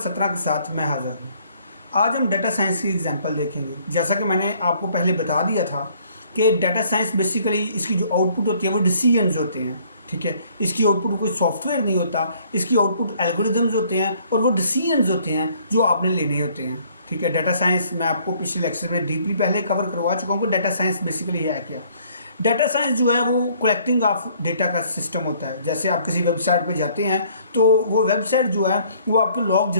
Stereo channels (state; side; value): inverted; both; correlation -0.61